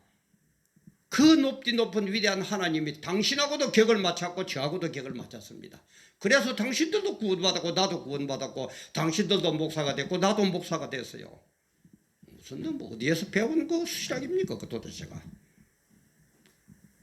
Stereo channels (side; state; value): both; identical; correlation 1.00